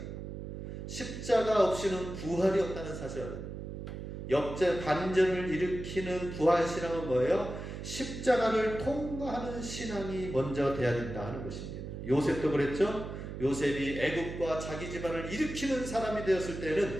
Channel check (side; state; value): right; noise; hum, 8 dB below the sound